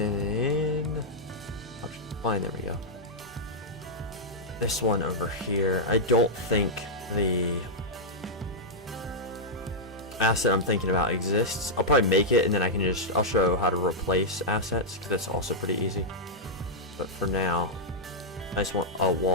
fine, there we go. This one over here, I don't think the asset I'm thinking about exists. I'll probably make it and then I'll show how to replace assets because that's also pretty easy. But for now, I just want a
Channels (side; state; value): both; normal; correlation -0.08